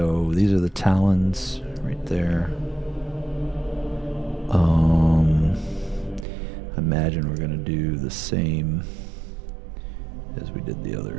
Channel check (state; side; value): drops out; left; at 6.2 s